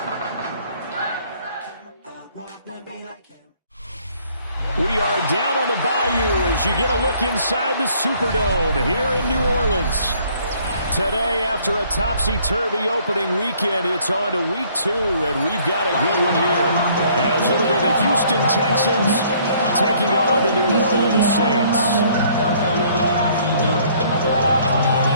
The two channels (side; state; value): both; inverted; correlation -0.61